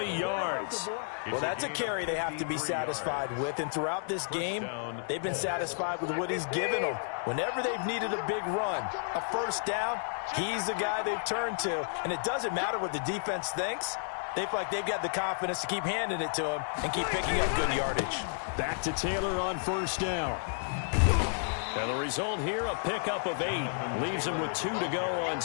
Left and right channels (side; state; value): right; silent; digital silence